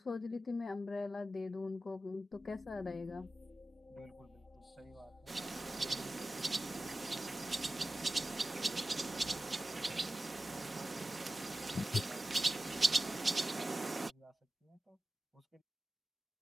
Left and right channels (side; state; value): both; normal; correlation 0.94